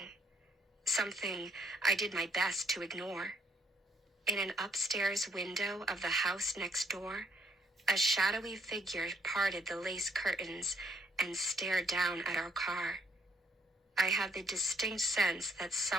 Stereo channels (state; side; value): normal; both; correlation 0.68